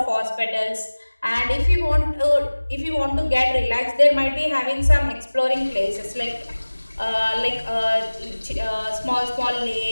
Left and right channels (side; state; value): both; inverted; correlation -1.00